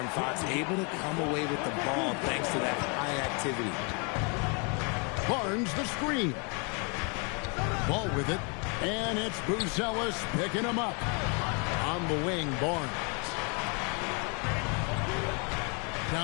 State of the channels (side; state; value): right; quieter; 34.8 dB